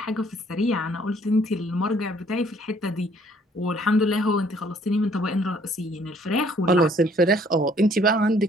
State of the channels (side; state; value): both; normal; correlation 0.61